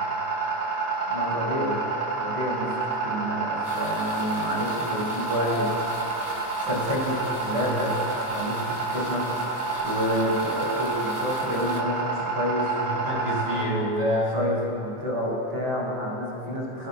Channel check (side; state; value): left; late; 23 ms